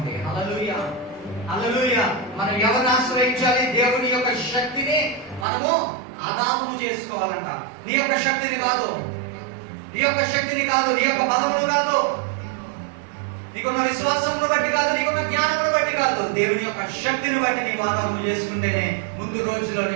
హల్లెలూయా, హల్లెలూయా. మనం ఎవరిని ఆశ్రయించాలి? దేవుని యొక్క శక్తిని మనము ఆదాము చేసుకోవాలంట. నీ యొక్క శక్తిని కాదు, నీ యొక్క శక్తిని కాదు, నీ యొక్క బలములు కాదు, నీకున్న విశ్వాసమును బట్టి కాదు, నీకున్న జ్ఞానమును బట్టి కాదు, దేవుని యొక్క శక్తిని బట్టి నీవు ఆదాము చేసుకుంటేనే ముందు రోజులో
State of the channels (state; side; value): drops out; left; at 5.5 s